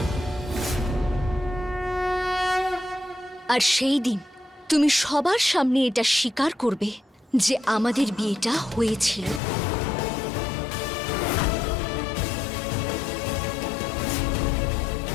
আর সেই দিন তুমি সবার সামনে এটা স্বীকার করবে যে আমাদের বিয়েটা হয়েছিল।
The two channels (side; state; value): right; drops out; at 9.4 s